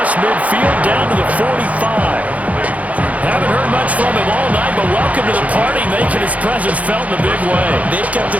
midfield down to the 45. Haven't heard much from him all night, but welcome to the party, making his presence felt in a big way. They've kept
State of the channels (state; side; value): late; left; 0.069 ms